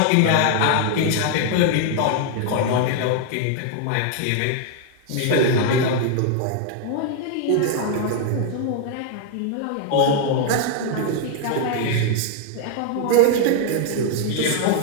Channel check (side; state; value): both; different; correlation 0.00